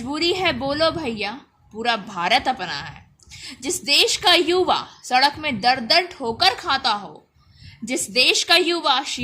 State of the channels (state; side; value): identical; both; correlation 1.00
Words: है बोलो भैया पूरा भारत अपना है। जिस देश का युवा सड़क में दर दर ठोकर खाता हो, जिस देश का युवा